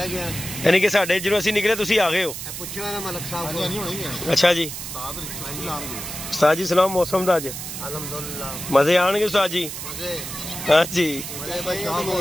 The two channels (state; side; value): noise; right; hiss, 8 dB below the sound